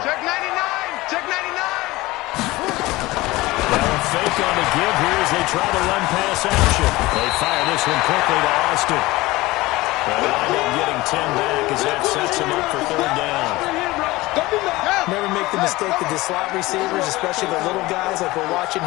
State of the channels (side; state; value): right; quieter; 19.9 dB